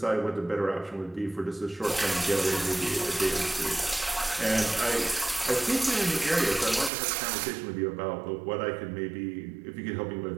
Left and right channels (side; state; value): left; drops out; at 6.9 s